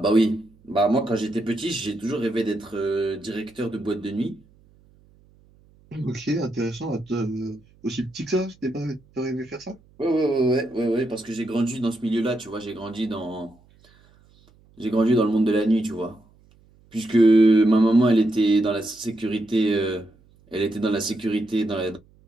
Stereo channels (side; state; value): right; noise; hum, 30 dB below the sound